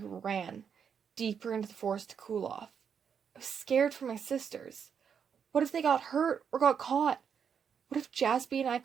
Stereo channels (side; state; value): left; quieter; 7.2 dB